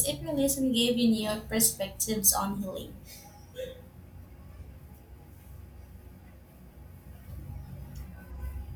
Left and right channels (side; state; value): both; identical; correlation 1.00